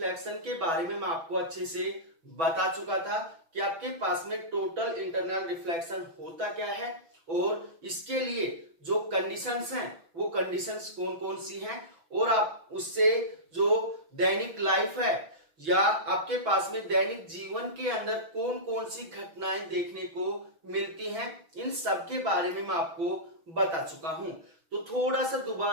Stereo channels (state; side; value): late; left; 6.1 ms